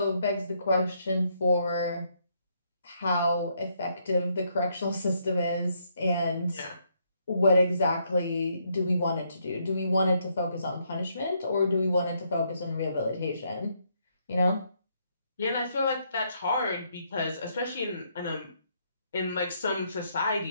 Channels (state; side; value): inverted; both; correlation -0.74